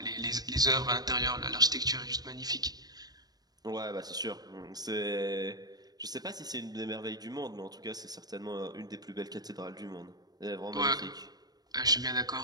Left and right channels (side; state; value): left; late; 0.19 ms